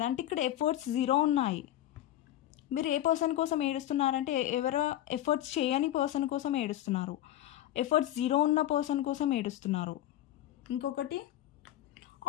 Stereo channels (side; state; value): right; quieter; 13.3 dB